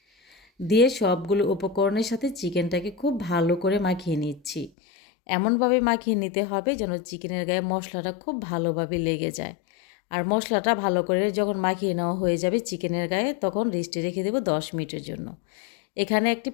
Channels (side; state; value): right; drops out; at 4.7 s